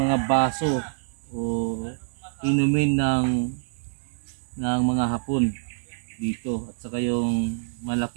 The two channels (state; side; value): silent; left; digital silence